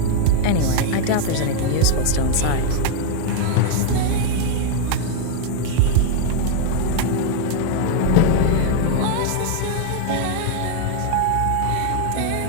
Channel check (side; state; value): both; different; correlation 0.00